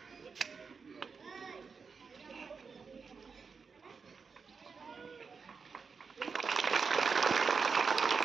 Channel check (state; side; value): quieter; left; 5.3 dB